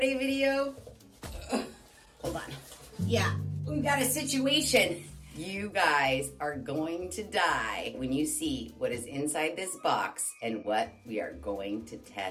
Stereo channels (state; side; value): identical; both; correlation 1.00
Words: video, hold on. Yeah, we got a situation. You guys are going to die when you see what is inside this box and what we are going to